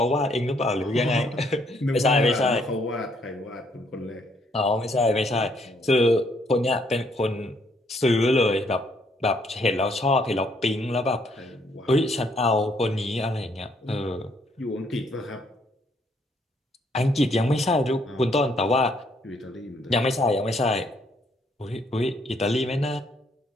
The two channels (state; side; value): normal; both; correlation 0.69